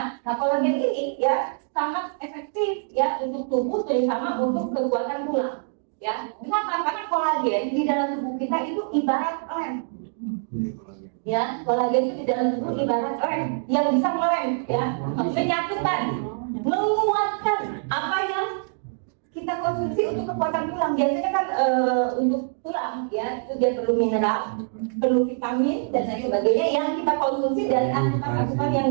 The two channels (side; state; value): left; silent; digital silence